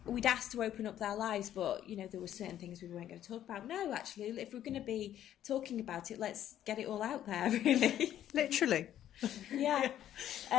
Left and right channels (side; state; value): right; quieter; 11.4 dB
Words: we'd asked to open up their lives, but, you know, there were certain things we weren't going to talk about. No, actually, if we're going to be talking about it, let's get it all out there, really. Literally. Yeah.